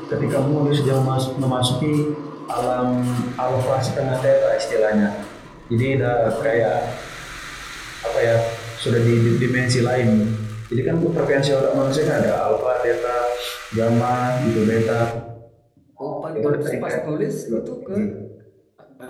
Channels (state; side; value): identical; both; correlation 1.00